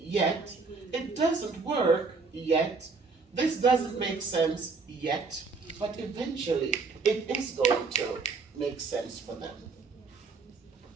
It doesn't work yet. This doesn't make sense yet. But eventually, it is going to make sense for them.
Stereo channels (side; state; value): left; quieter; 4.4 dB